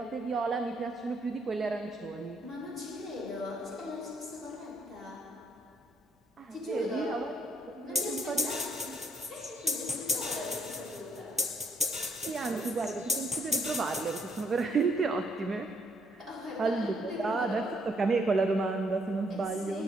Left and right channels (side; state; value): both; normal; correlation 0.70